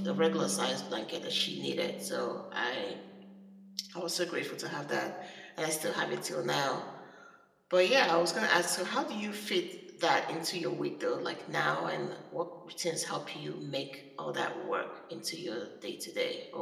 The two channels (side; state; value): both; identical; correlation 1.00